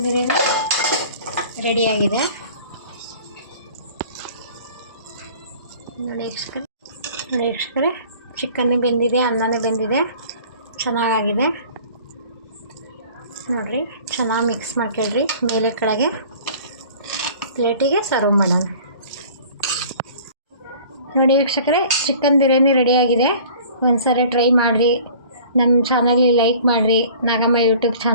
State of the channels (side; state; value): both; inverted; correlation -0.48